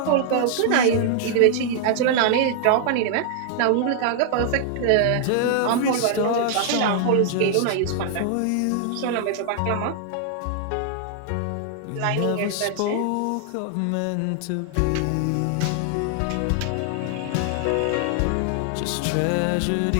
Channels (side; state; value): both; different; correlation 0.00